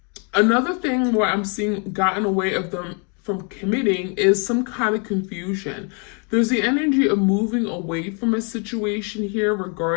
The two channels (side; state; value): right; quieter; 37.3 dB